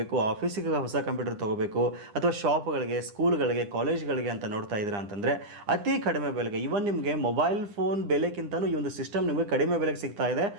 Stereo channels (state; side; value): late; left; 9.8 ms